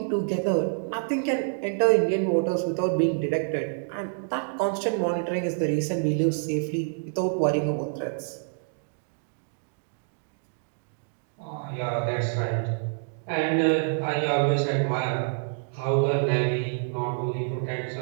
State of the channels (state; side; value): silent; left; digital silence